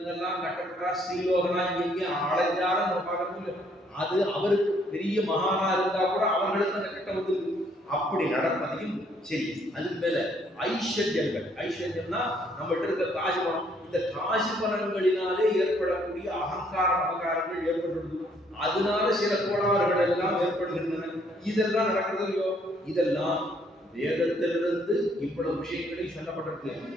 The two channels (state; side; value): normal; both; correlation 0.66